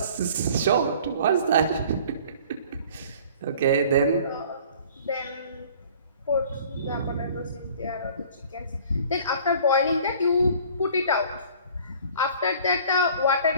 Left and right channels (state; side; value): inverted; both; correlation -0.50